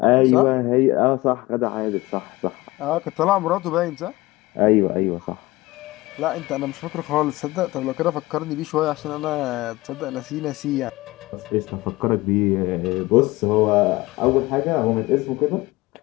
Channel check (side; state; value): right; quieter; 20.1 dB